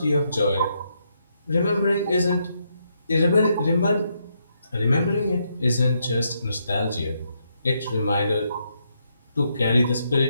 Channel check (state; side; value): inverted; both; correlation -0.78